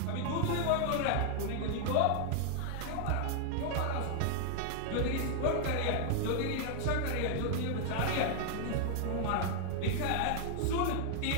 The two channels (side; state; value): both; different; correlation 0.00